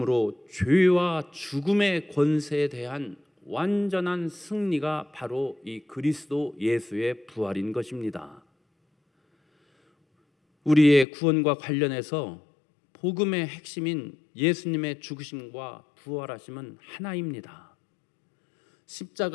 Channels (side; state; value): right; drops out; at 11.1 s